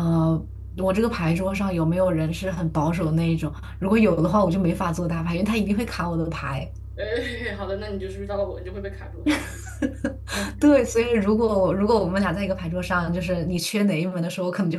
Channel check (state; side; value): identical; both; correlation 1.00